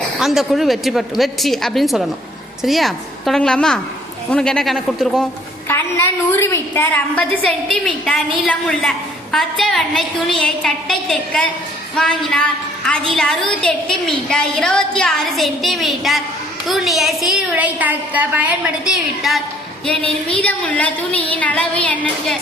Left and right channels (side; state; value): both; normal; correlation 0.60